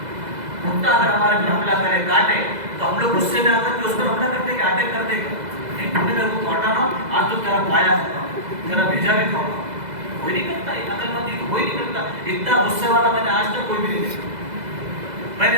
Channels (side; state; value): left; late; 2.0 ms